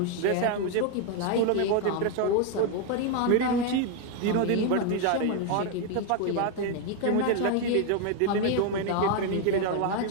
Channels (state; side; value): different; both; correlation 0.01